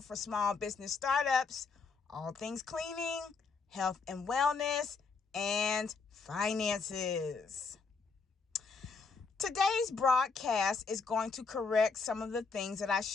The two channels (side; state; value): right; quieter; 4.7 dB